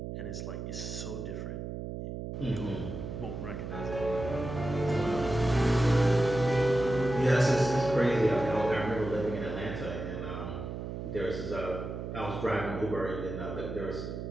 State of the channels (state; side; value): noise; right; hum, 6 dB below the sound